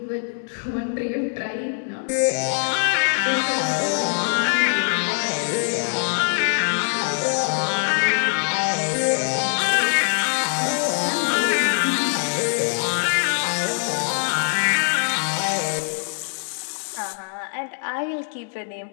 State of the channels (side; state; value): right; silent; 63 dB below the other